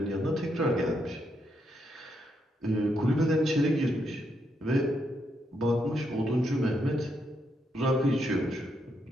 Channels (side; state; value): both; normal; correlation 0.79